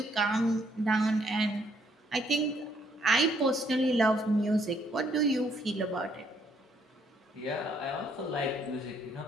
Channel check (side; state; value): both; normal; correlation 0.68